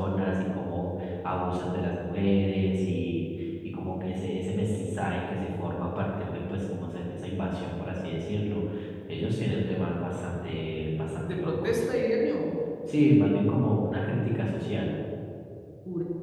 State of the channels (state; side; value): identical; both; correlation 1.00